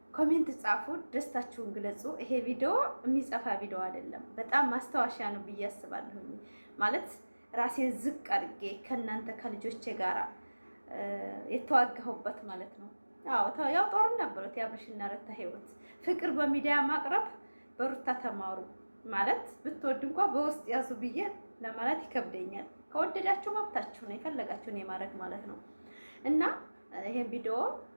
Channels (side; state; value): both; inverted; correlation -1.00